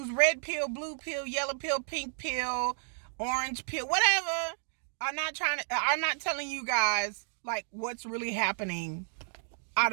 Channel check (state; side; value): silent; left; digital silence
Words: red pill, blue pill, yellow pill, pink pill, orange pill, whatever, are not telling you guys like what's really happening out